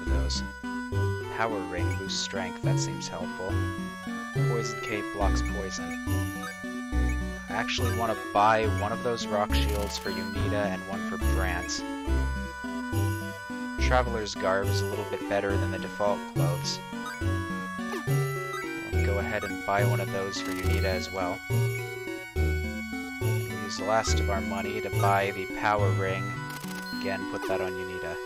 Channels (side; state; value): both; identical; correlation 1.00